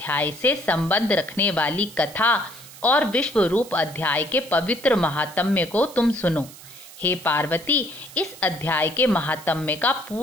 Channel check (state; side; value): noise; right; hiss, 18 dB below the sound